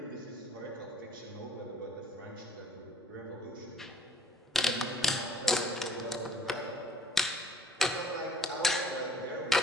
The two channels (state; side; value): normal; both; correlation 0.55